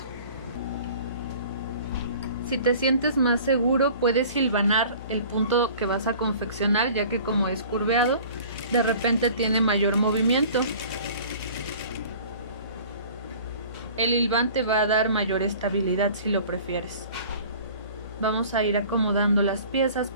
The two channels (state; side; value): inverted; both; correlation -0.46